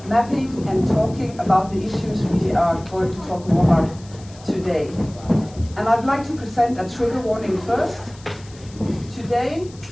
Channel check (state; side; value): noise; left; hiss, 23 dB below the sound